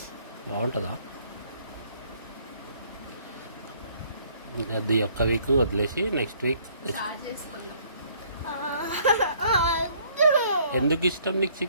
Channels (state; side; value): inverted; both; correlation -0.62